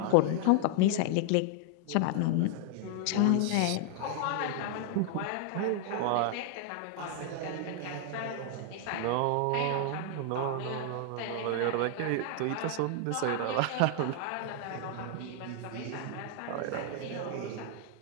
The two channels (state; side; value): different; both; correlation 0.00